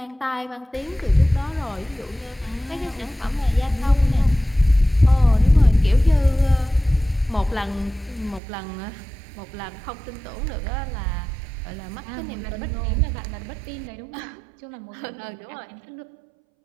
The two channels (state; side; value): drops out; left; at 8.4 s